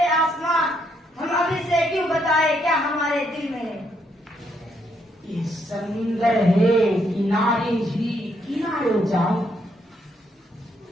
आसमां, हम अभी से क्यों बताए क्या हमारे दिल में है। ये समुंदर है किनारे ही किनारे जाओ,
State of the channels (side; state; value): both; normal; correlation 0.74